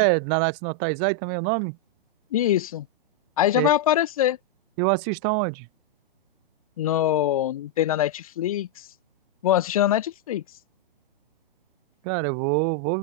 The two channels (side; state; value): both; normal; correlation 0.00